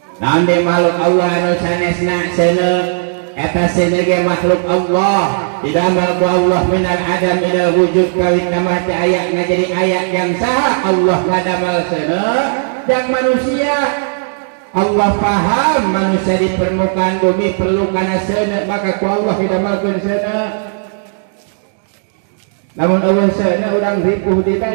Naon di makhluk Allah anu sanesna seuneu eta seuneu ge makhluk Allah. Didamel ku Allah minal adam ila wujud kawit nama teh aya ngajadi aya yang saha Allah ngadamel seuneu yang manusia. Allah paham manusia di permukaan bumi perlu kana seuneu, maka ku Allah didamelkeun seuneu. Namun awal sana orang ripuh di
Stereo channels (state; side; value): silent; left; digital silence